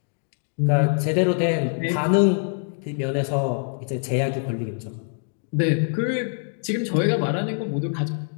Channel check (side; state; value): right; silent; digital silence